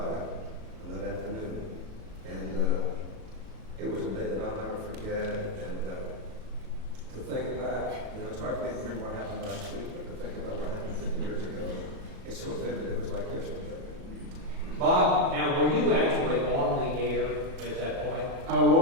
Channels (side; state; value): left; late; 37 ms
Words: on that afternoon, and it was a day that I'll never forget. And to think back, you know, it's hard for me to remember what happened last week, but to think about what happened 50 years ago, it's so vivid. It was like yesterday. Bob, now were you actually on the air at that point? I